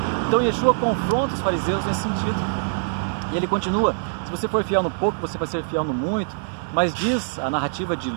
Então Yeshua confronta os fariseus nesse sentido. E ele continua: se você for fiel no pouco, você vai ser fiel no muito. Mas diz a narrativa de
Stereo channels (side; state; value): left; silent; digital silence